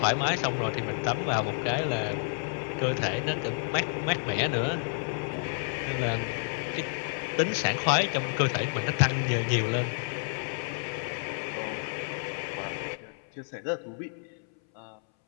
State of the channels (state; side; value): silent; right; 58 dB below the other